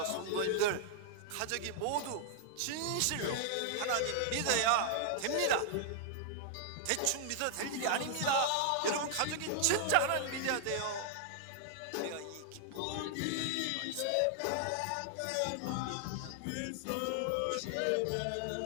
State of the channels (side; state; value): both; different; correlation 0.00